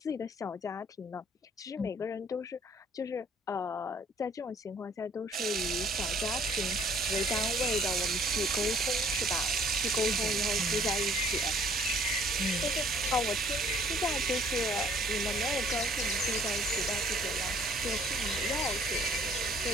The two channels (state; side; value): normal; both; correlation 0.58